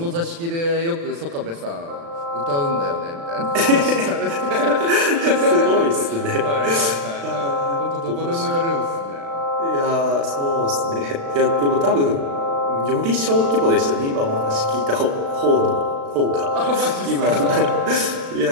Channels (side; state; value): left; late; 36 ms